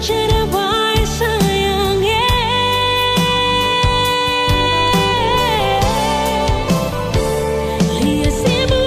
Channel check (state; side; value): identical; both; correlation 1.00